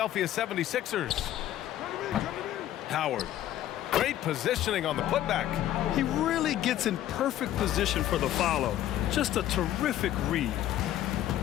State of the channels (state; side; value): quieter; right; 12.6 dB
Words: 76ers. Howard. Great positioning on the putback. He really gets in perfect position for the follow. Just a terrific read.